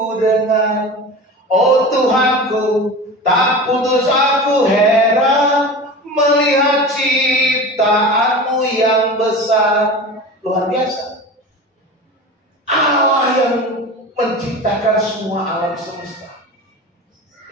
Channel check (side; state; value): both; normal; correlation 0.32